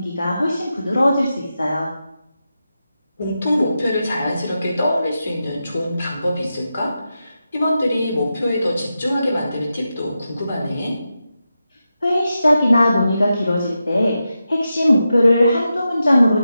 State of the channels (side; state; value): both; inverted; correlation -0.89